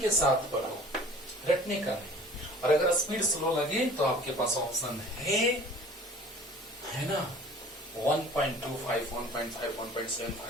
साथ पढ़ो, रटने का नहीं। और अगर स्पीड स्लो लगे तो आपके पास ऑप्शन है ना, 1.25, 1.5,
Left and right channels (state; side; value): normal; both; correlation 0.46